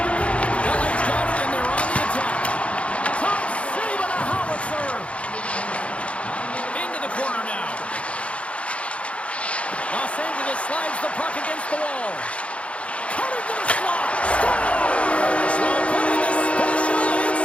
LA's got it, and they're on the attack. Top save on a howitzer. Into the corner now. Los Angeles slides the puck against the wall. Cutting to the slot. Scores! Well, putting the special in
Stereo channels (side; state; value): right; late; 0.062 ms